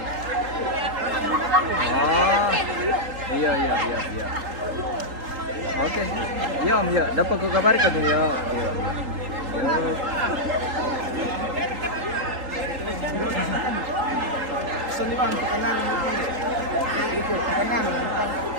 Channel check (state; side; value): late; left; 3.8 ms